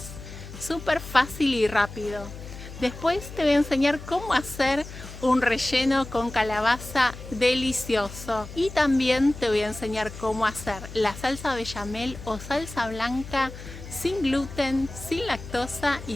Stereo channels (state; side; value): noise; left; hum, 13 dB below the sound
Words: Súper fácil y rápido. Después te voy a enseñar cómo hacer un relleno con calabaza delicioso. Y también te voy a enseñar cómo hacer la salsa bechamel o salsa blanca sin gluten, sin lactosa